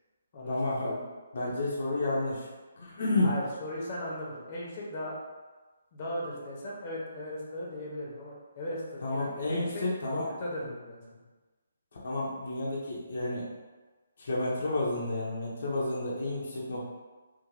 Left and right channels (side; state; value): both; inverted; correlation -0.76